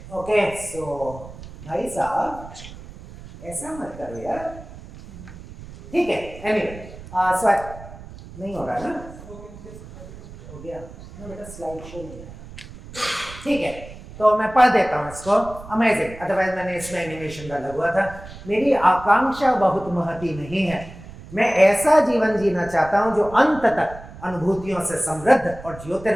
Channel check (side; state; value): right; noise; rumble, 16 dB below the sound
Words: ओके सो भाई साहब ऐसा मत करो यार. ठीक है. एनीवे सो नहीं हो रहा ना. हो गया ना बेटा. स्लाइड शो नहीं है. ठीक है तो मैं पढ़ देता हूँ इसको. अमेजिंग. अदरवाइज मैंने इसमें एनिमेशन डाला हुआ था. मेरी आकांक्षा बहुत महती नहीं है. मैं ऐसा जीवन जीना चाहता हूँ जो अंत तक अनुभूतियों से समृद्ध और